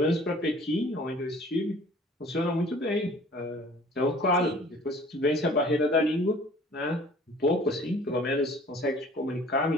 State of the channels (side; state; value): both; normal; correlation 0.50